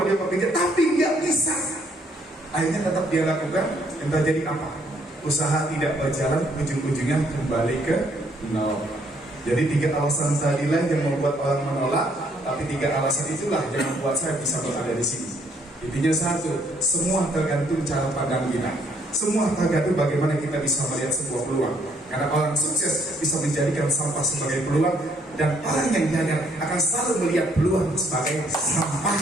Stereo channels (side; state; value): both; normal; correlation 0.68